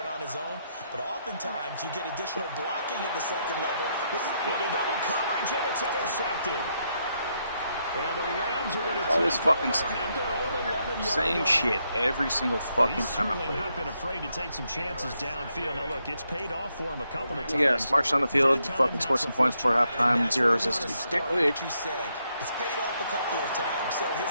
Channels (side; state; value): both; inverted; correlation -0.78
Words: on his own, but oftentimes you get additional blocking at the second level. With a double coverage, and it's intercepted. And the Rams are going to All this fucking same line. shit every single fucking time I play. He's certainly not been afraid to take some chances downfield. Now, look, it's paid off for him a couple of times. Yeah, march down the field, fucking score some points before halftime, 0 resistance. What you said. It's paid off a couple of times. So